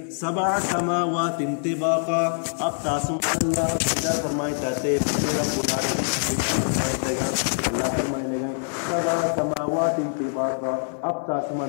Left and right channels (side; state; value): right; silent; 60 dB below the other